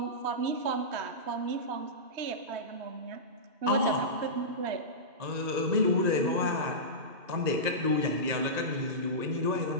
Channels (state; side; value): late; left; 2.0 ms